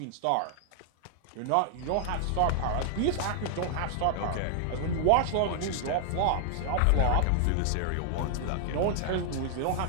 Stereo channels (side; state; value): both; different; correlation 0.00